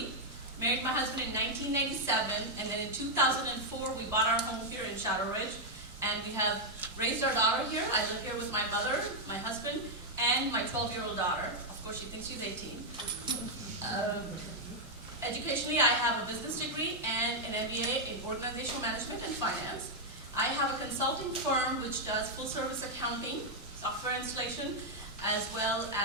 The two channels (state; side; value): normal; both; correlation -0.02